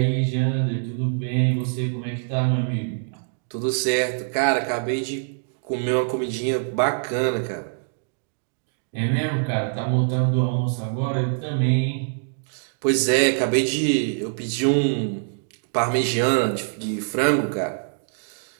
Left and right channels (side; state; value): left; silent; digital silence